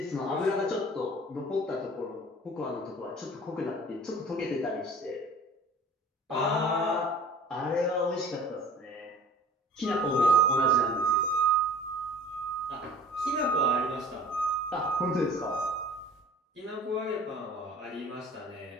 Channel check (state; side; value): normal; both; correlation 0.45